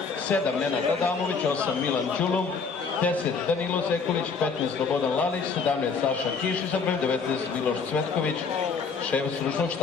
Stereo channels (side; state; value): right; quieter; 5.1 dB